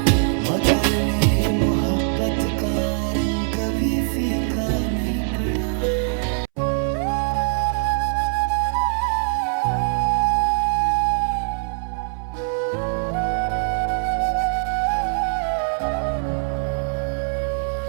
मगर मेरी मोहब्बत का रंग कभी फीका नहीं पड़ा।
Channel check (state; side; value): silent; left; 64 dB below the other